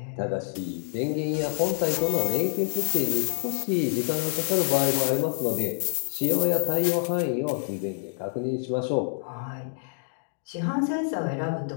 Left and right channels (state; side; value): silent; right; digital silence